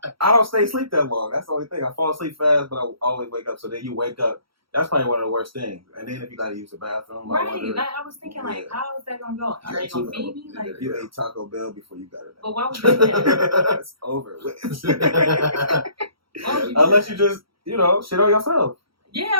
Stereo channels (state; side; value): late; left; 0.75 ms